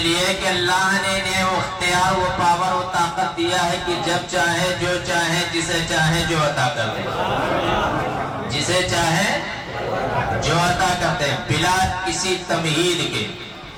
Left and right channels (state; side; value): identical; both; correlation 1.00